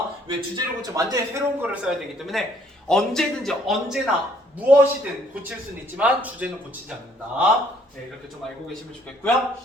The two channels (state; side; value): normal; both; correlation 0.64